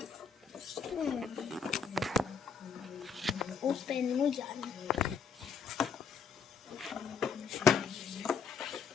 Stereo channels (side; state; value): right; quieter; 6.1 dB